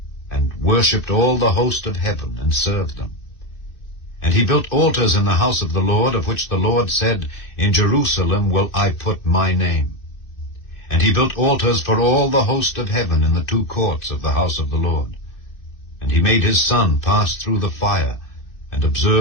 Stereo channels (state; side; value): late; right; 2.6 ms